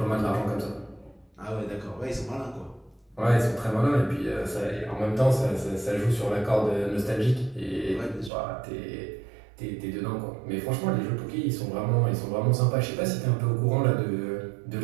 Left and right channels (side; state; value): left; drops out; at 8.3 s